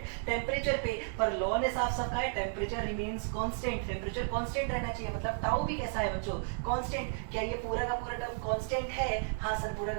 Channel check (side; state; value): left; silent; digital silence